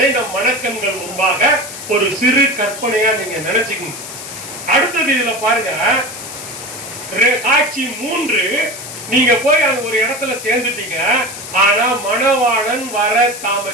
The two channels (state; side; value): noise; left; hiss, 11 dB below the sound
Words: நம் மனக்கண்கள் முன்பாக ஒரு சிறு கற்பனையா நீங்க நினைச்சுக்கணும். அடுத்தது இதுல பாருங்க, காட்சி 3. நீங்க போய் அங்க ஒரு இடத்துல சேர்ந்துட்டீங்க. ஆனா மணவாளன் வர